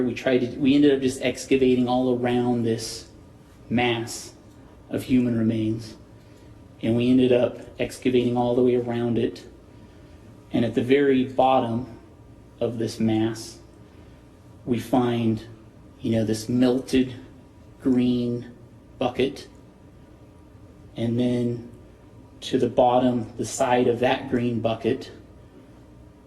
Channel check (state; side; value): identical; both; correlation 1.00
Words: we ended up just excavating all around this mass of human remains. And we ended up excavating all the way around it. And at the very bottom of this mass, we find, this melted green bucket. And then to the bottom, the side of that green bucket,